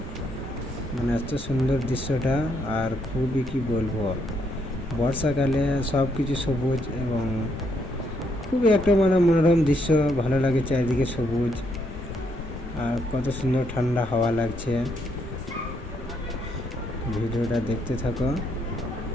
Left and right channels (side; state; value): both; normal; correlation 0.74